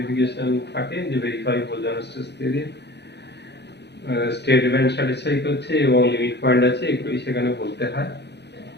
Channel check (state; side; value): late; right; 0.50 ms